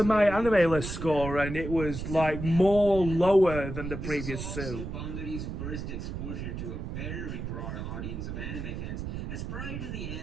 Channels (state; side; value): noise; right; rumble, 6 dB below the sound